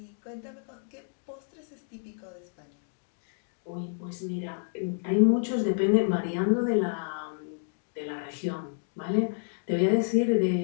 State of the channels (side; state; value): right; silent; digital silence